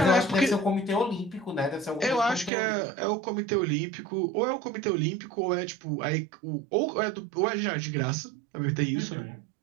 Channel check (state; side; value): drops out; left; at 2.5 s